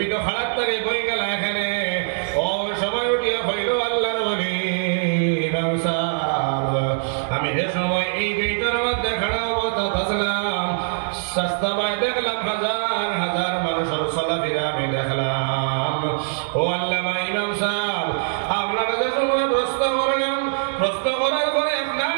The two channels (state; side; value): silent; left; 64 dB below the other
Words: তো খারাপ তারে বই গেলা এখানে ও সময় উঠিয়া হইল আল্লাহর ওলি ইমাম সাহেব আমি যে সময় এই গেটের মধ্যে খাড়া অবস্থা আসলাম সস্তা ভাই দেখলাম হাজার হাজার মানুষের চলাফেরা আমি দেখলাম ও আল্লামা ইমাম সাহেব আপনারা যে সময় প্রশ্ন করলাম প্রশ্ন করার পরে আপনার